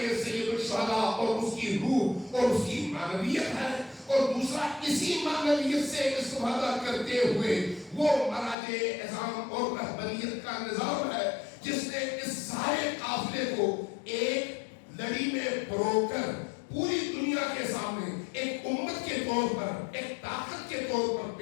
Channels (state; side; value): drops out; right; at 8.6 s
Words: سید الشہداء اور اس کی روح اور اس کی معنویت ہے، اور دوسرا اسی معنویت سے استفادہ کرتے ہوئے وہ مراجع اعظام اور رہبریت کا نظام ہے جس نے اس سارے قافلے کو ایک لڑی میں پرو کر پوری دنیا کے سامنے ایک امت کے طور پر، ایک طاقت کے طور پر